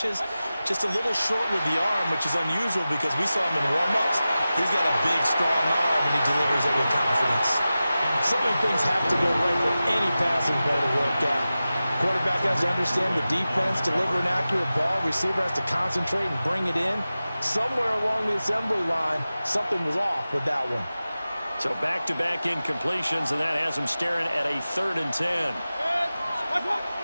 Just a little short with the arm, which is unusual because we saw him in warm-ups. He's got a big, strong arm, and he delivers it with confidence. So many things have to go right for any passing play to work out. Quarterback has to understand the defense, deliver an accurate ball. Receiver has to concentrate and bring it in. Somewhere along the assembly line, something was off with that one. So back-to-back incompletions, and that has him staring at a 3rd and 10.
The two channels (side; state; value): both; inverted; correlation -0.95